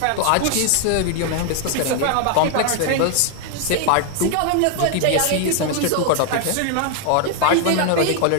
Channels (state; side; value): different; both; correlation 0.00